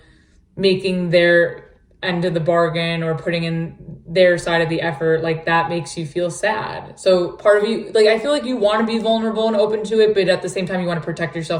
making their end of the bargain or putting in their side of the effort, like that makes you feel sad. So part of you, like I feel like you want to be vulnerable and open to it, but at the same time you want to protect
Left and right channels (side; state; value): both; identical; correlation 1.00